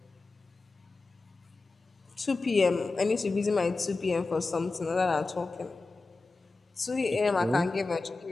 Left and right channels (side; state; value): right; quieter; 3.6 dB